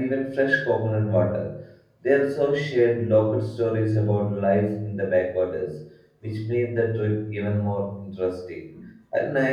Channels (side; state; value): both; identical; correlation 1.00